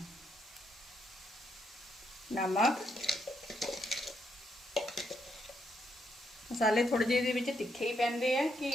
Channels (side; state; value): both; normal; correlation 0.77